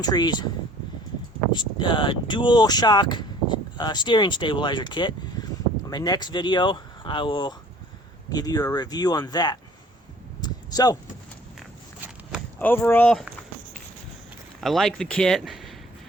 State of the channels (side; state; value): both; normal; correlation 0.53